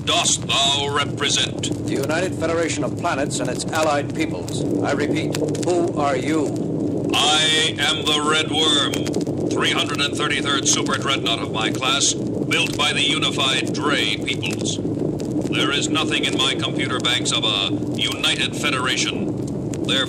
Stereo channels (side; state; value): both; identical; correlation 1.00